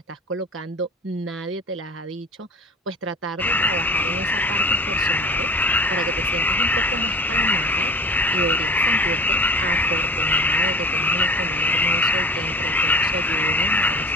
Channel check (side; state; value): both; normal; correlation 0.39